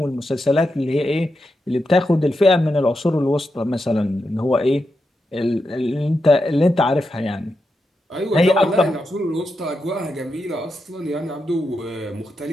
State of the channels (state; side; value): normal; both; correlation 0.86